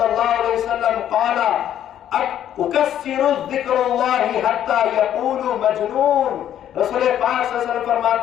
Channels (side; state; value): right; quieter; 10.7 dB